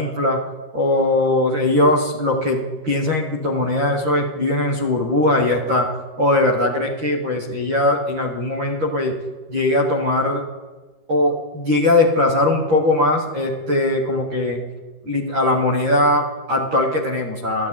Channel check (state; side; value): late; left; 13 ms